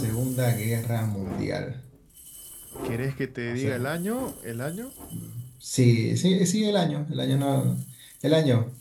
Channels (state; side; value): identical; both; correlation 1.00